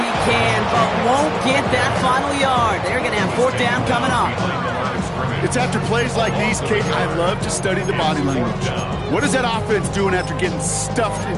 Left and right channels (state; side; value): identical; both; correlation 1.00